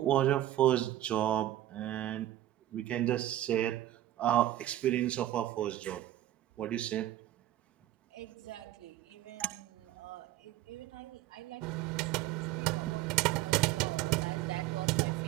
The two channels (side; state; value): left; quieter; 13.7 dB